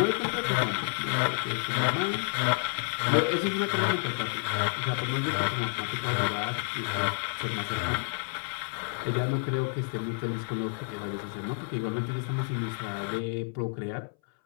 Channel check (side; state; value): right; silent; 58 dB below the other